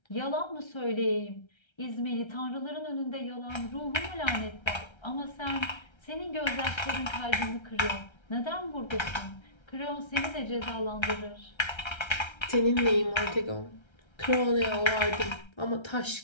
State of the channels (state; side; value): late; right; 1.3 ms